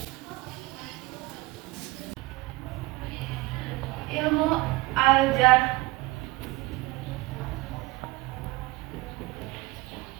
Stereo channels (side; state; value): left; quieter; 21.5 dB